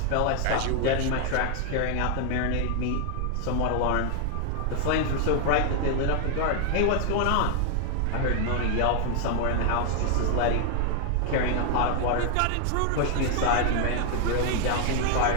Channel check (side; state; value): both; different; correlation 0.00